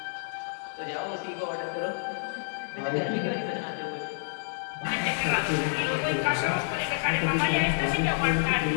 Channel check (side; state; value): right; silent; digital silence